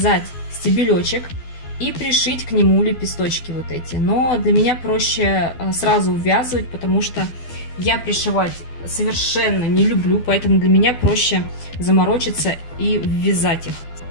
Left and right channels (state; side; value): late; right; 12 ms